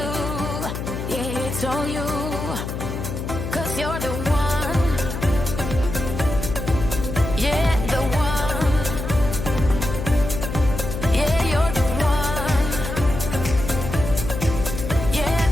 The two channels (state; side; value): noise; left; hum, 5 dB below the sound